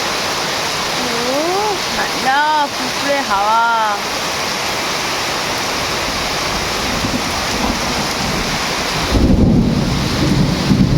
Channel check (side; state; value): both; identical; correlation 1.00